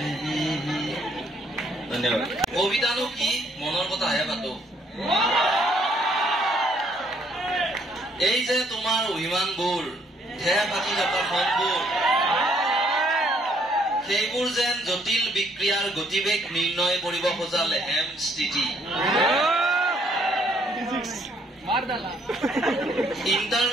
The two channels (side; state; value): both; normal; correlation 0.66